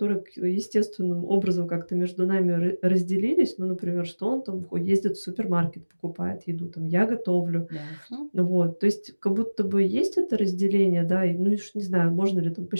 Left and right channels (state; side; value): inverted; both; correlation -1.00